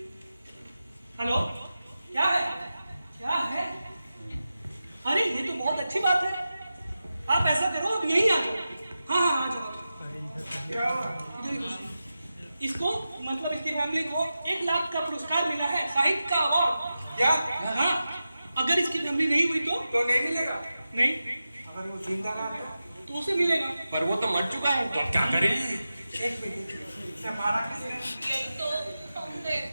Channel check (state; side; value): inverted; both; correlation -0.92